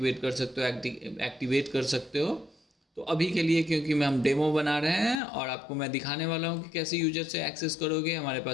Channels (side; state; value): right; drops out; at 5.2 s